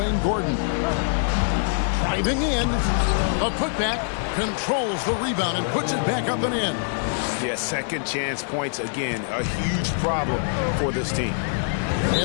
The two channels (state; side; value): silent; right; digital silence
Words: Gordon. Driving in. A putback. Controls the rebound and puts it back up and in. Yeah, second chance points again. A huge problem for this team.